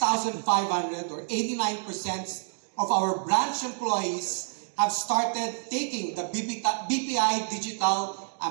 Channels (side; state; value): left; silent; 59 dB below the other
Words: or 89% of our branch employees have started taking the BPI Digital